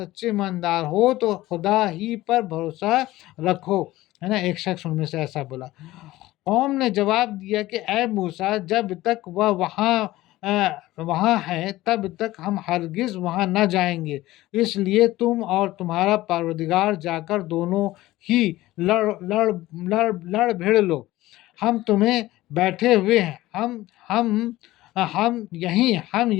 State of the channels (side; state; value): right; quieter; 17.0 dB